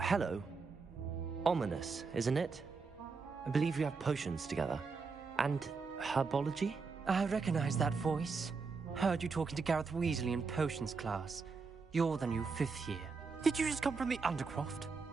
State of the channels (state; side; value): quieter; left; 4.7 dB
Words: hello. Ominous, isn't it? I believe we have potions together. And herbology? I recognize that voice. Heard you talking to Gareth Weasley in potions class. You're the new 5th year. Did you just come from the Undercroft?